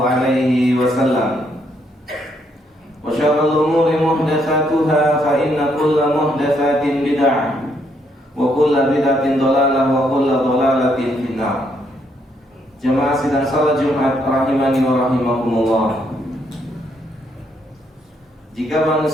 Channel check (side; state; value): both; normal; correlation 0.73